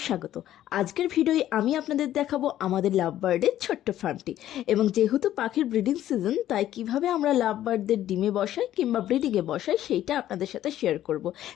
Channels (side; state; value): right; quieter; 12.6 dB